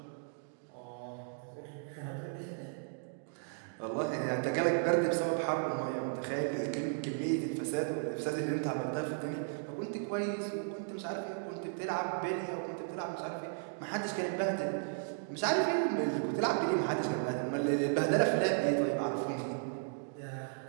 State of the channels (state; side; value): silent; left; digital silence